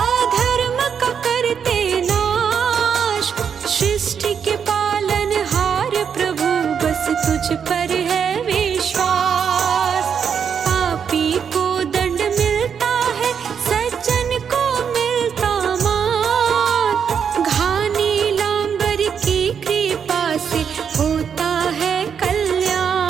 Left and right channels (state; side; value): quieter; left; 7.2 dB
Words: अधर्म का करते नाश, सृष्टि के पालनहार प्रभु बस तुझ पर है विश्वास। पापी को दंड मिलता है सज्जन को मिलता मान, घानी लांबर की कृपा से होता है